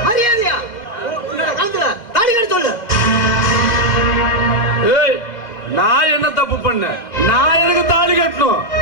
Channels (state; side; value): late; right; 2.2 ms